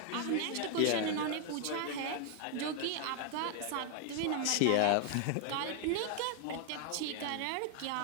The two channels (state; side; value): different; both; correlation 0.01